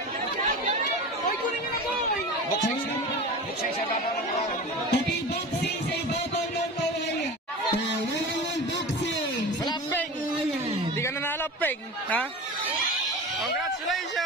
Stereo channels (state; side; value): normal; both; correlation 0.31